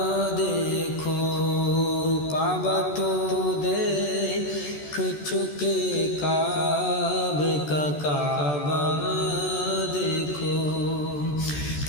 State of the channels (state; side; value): late; right; 14 ms